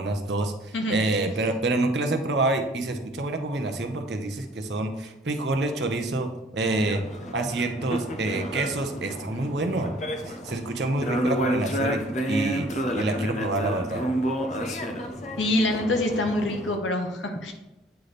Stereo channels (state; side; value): normal; both; correlation 0.55